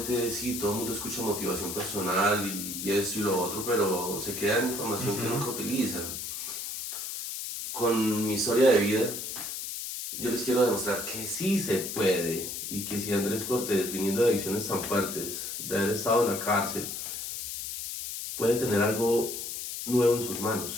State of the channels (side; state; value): left; noise; hiss, 6 dB below the sound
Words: sí, todo el mundo escucha motivación personal y esto y lo otro, pero se queda en información que nunca utilizan. Con mi historia de vida, yo les quiero demostrar que sí se puede y que si Andrés Cortés, viniendo de adicciones tan fuertes, de haber estado en la cárcel, puede tener algo nuevo en sus